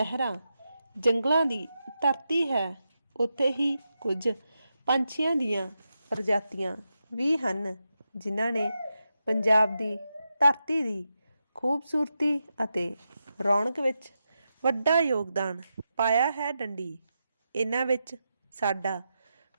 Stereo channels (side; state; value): both; inverted; correlation -0.88